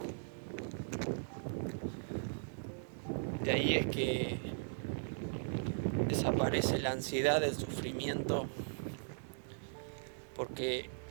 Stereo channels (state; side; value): silent; left; digital silence